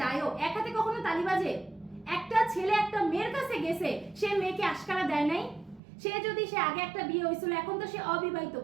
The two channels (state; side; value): drops out; left; at 5.8 s